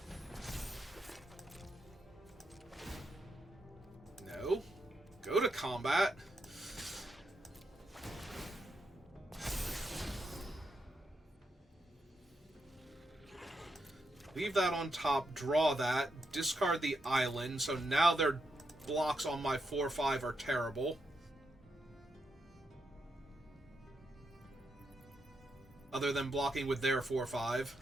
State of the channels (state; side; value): normal; both; correlation 0.83